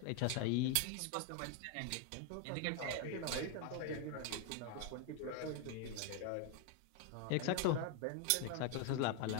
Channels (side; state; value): both; different; correlation 0.01